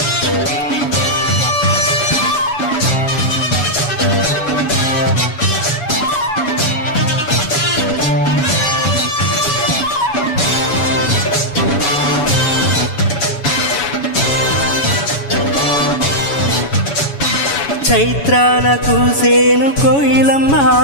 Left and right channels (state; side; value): late; right; 7.1 ms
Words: చైత్రాన కూసేను కోయిలమ్మ,